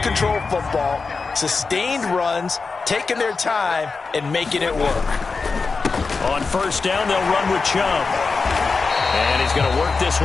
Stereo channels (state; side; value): quieter; right; 4.5 dB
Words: control football, sustained runs, taking their time, and making it work. On first down, they'll run with Chubb. And he's going to work this